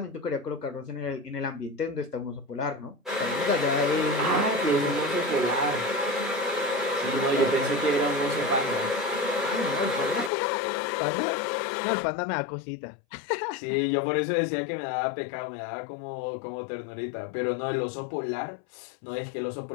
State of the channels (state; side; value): drops out; right; at 10.3 s